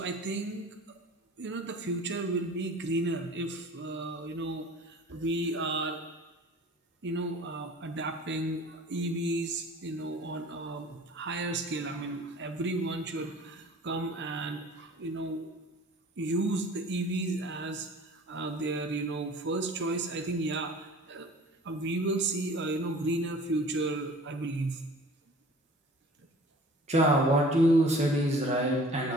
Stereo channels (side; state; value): both; normal; correlation 0.45